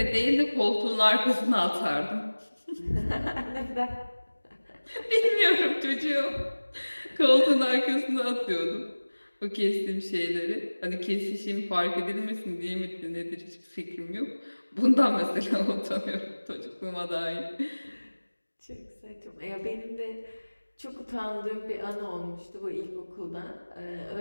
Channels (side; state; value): both; inverted; correlation -1.00